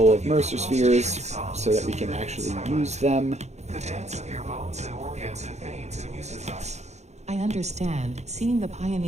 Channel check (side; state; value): left; late; 0.33 ms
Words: of Mercer spheres so that we can actually use them. The dance of your bones and organs and veins amuses us. I understand. Seeing the